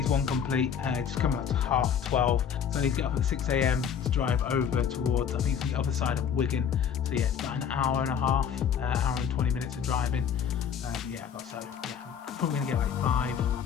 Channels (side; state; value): right; quieter; 7.7 dB